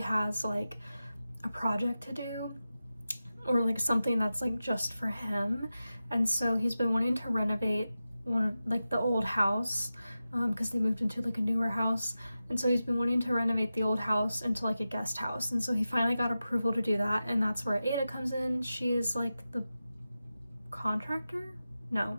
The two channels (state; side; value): inverted; both; correlation -0.93